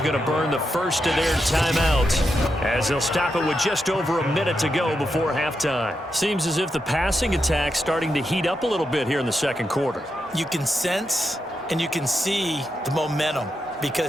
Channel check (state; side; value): normal; both; correlation 0.85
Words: going to burn the first of their timeouts as they'll stop it with just over a minute to go before halftime. Seems as if the passing attack's starting to heat up a little bit here in the 2nd quarter. You can sense and you can see the momentum